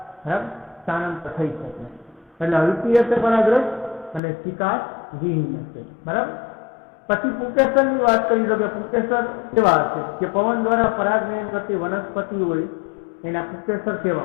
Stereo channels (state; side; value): drops out; right; at 4.2 s